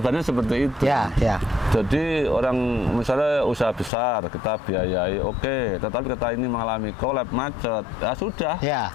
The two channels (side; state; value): right; drops out; at 3.9 s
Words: seperti itu. Jadi orang misalnya usaha besar kita biayai tetapi kita ini mengalami kolab macet, sudah